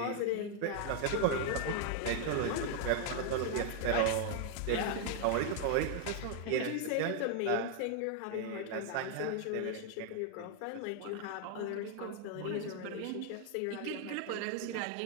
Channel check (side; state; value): both; different; correlation 0.00